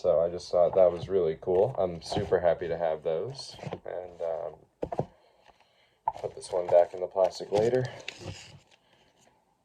I just thought that was really cool. I'm super happy to have those. And put this one back in the plastic later.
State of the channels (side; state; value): both; identical; correlation 1.00